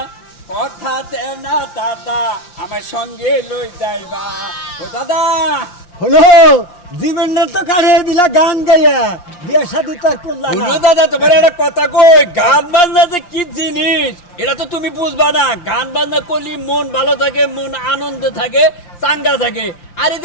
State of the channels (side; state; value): right; late; 5.7 ms